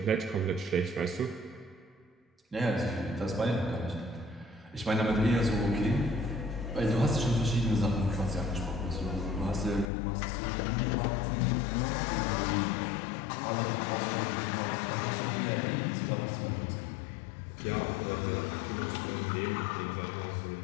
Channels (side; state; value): right; drops out; at 9.9 s